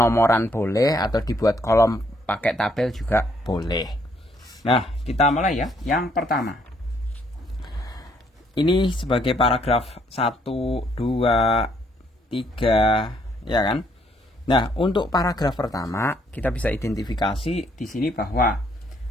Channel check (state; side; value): normal; both; correlation 0.69